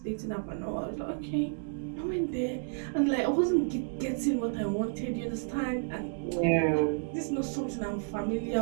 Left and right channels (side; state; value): left; silent; digital silence